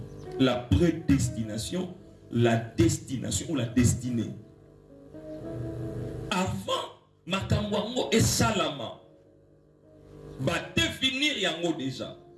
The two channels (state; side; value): identical; both; correlation 1.00